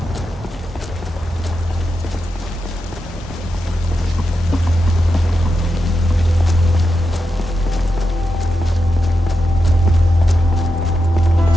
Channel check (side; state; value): both; normal; correlation 0.88